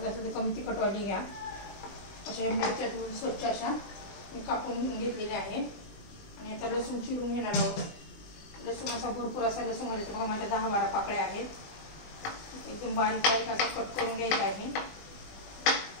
असेल तर कमी तिखटवाली घ्या। अशा मिरच्या स्वच्छ अशा मी कापून घेतलेल्या आहेत आणि आता लसूण चिरून घेणार आहोत। लसूण असा भरपूर असा लसूण घालायचा। बघा माझ्या 10-12 पाकळ्या आहेत। एकदम बारीक बारीक असा कट करून घ्यायचा आहे।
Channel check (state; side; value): late; right; 20 ms